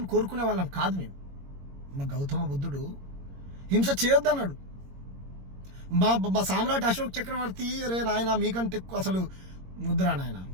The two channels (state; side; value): late; left; 22 ms